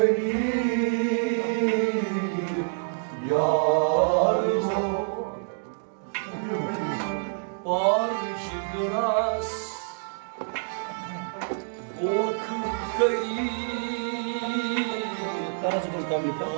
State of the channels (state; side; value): silent; left; digital silence